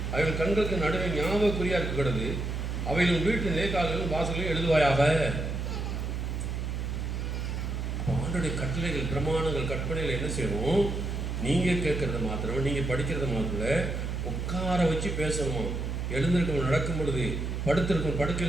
அவைகள் கண்களுக்கு நடுவே ஞாபகக்குறியா இருக்கிறது. அவைகளும் வீட்டு நேர்கால்களும் வாசல்களும் எழுதுவாயாக. ஆண்டுடைய கட்டளைகள், பிரமாணங்கள், கற்பனைகள் என்ன செய்யணும்? நீங்கள் கேட்கறது மாத்திரம், நீங்கள் படிக்கிறது மாத்திரம் உட்கார வச்சு பேசணுமா? எழுந்திருக்கும் நடக்கும் பொழுது படுத்திருக்கும்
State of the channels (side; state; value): right; noise; hum, 3 dB below the sound